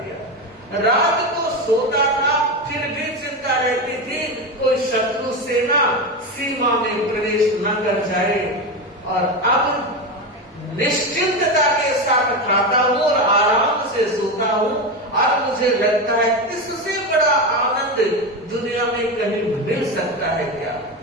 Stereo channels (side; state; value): both; normal; correlation 0.17